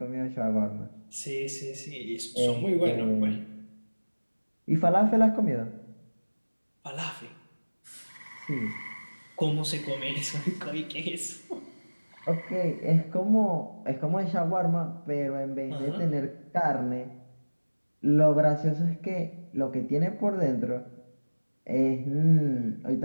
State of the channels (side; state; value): both; inverted; correlation -1.00